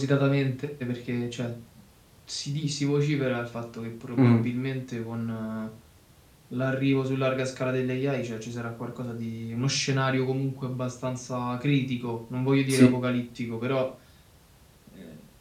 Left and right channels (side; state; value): both; identical; correlation 1.00